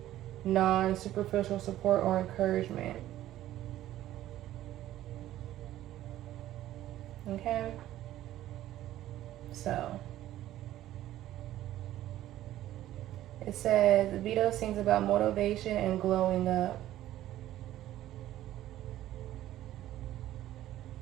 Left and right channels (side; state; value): left; quieter; 13.7 dB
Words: non-superficial support or encouragement. Okay, so it says Vito sings about motivation and glowing up.